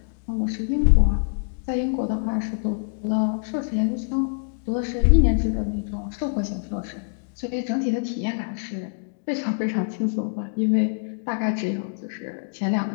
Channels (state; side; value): silent; right; digital silence